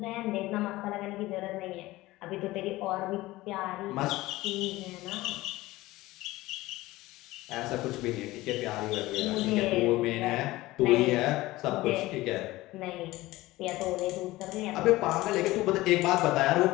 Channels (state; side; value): quieter; right; 18.5 dB